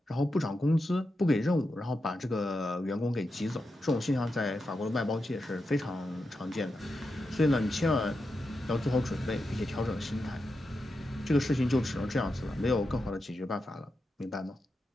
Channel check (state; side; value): normal; both; correlation 0.88